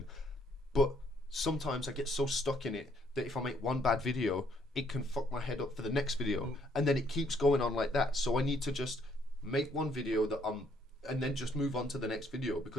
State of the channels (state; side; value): normal; both; correlation 0.68